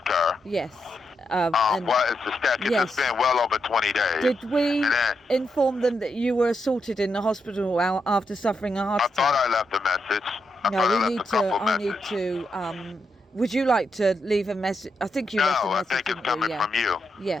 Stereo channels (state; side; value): normal; both; correlation 0.83